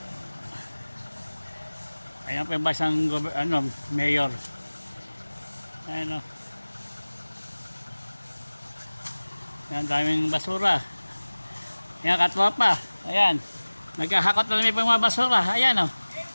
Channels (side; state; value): both; inverted; correlation -1.00